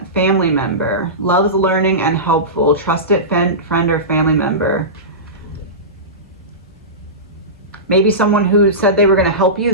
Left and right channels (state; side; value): normal; both; correlation -0.19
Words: family member, loves learning and helpful, trusted friend or family member. Maybe someone who said they were going to help you